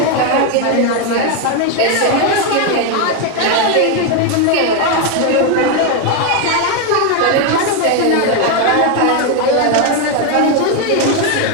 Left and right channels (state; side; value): different; both; correlation 0.02